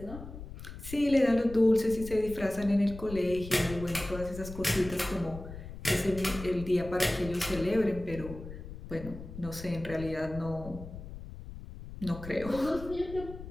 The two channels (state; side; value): noise; left; rumble, 12 dB below the sound